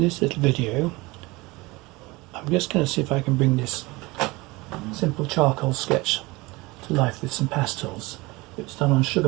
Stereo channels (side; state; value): left; quieter; 22.8 dB